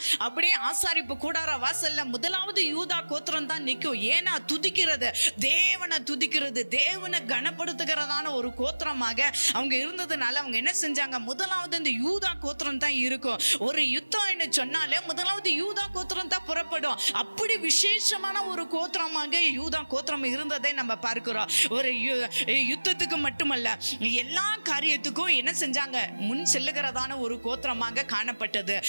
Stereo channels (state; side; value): inverted; both; correlation -1.00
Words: அப்படியே ஆசாரிப்பு கூடார வாசல்ல முதலாவது யூதா கோத்திரம் தான் நிற்கும். ஏன்னா துதிக்கிறது, தேவனை துதிக்கிறது, தேவனை கனப்படுத்துகிறதான ஒரு கோத்திரமாக அவங்க இருந்ததுனால அவங்க என்ன செஞ்சாங்க, முதலாவது இந்த யூதா கோத்திரம் தான் இருக்கும். ஒரு யுத்தம் சொன்னாலே முதலாவது யூதா கோத்திரம் தான் புறப்படும். அப்படி விசேஷமான ஒரு கோத்திரமாக யூதா கோத்திரம் இருந்ததை நம்ம பார்க்கிறோம். ஒரு யுத்தத்துக்கு மட்டுமல்ல, எல்லா காரியத்துக்கும் என்ன செஞ்சாங்க, முன் செல்லுகிறதான ஒரு கோத்திரமாக காணப்பட்டது.